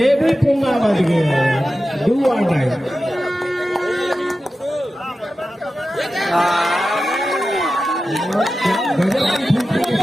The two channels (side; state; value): both; normal; correlation 0.93